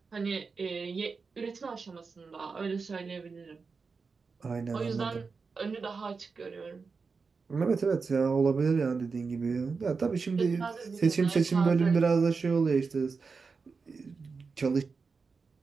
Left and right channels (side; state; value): left; quieter; 4.8 dB